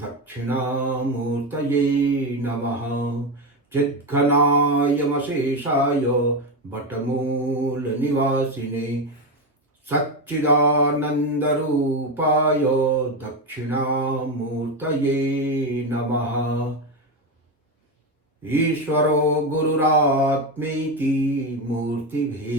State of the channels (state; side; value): normal; both; correlation 0.13